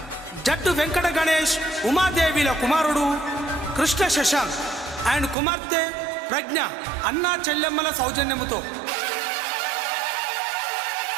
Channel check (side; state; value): left; drops out; at 5.4 s